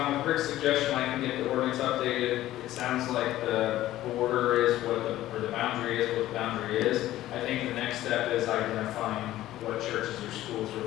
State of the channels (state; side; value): quieter; right; 14.6 dB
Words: with Rick's suggestion, I can get the ordinance updated. It sounds like the border is or the boundary is what the boundary is. I think the next step is identifying what churches or schools are